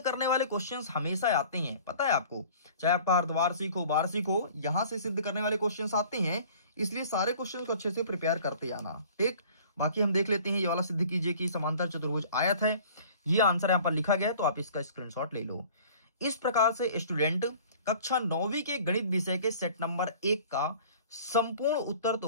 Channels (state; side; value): inverted; both; correlation -0.48